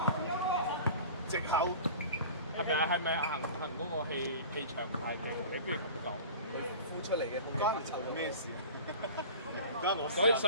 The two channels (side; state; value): both; inverted; correlation -0.38